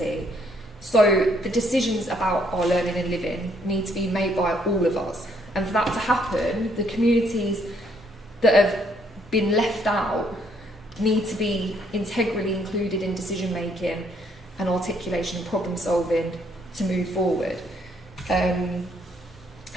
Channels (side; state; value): both; normal; correlation 0.69